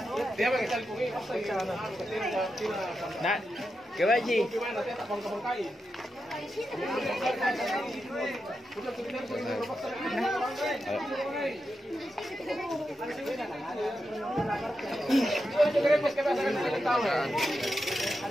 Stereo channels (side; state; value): both; normal; correlation 0.88